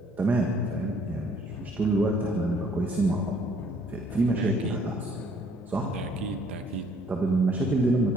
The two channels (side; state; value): both; normal; correlation 0.62